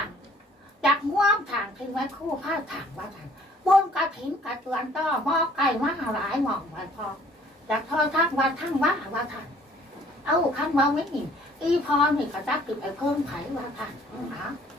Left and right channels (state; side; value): normal; both; correlation 0.58